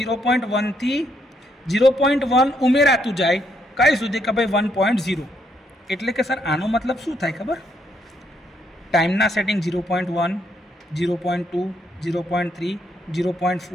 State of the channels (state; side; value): normal; both; correlation 0.74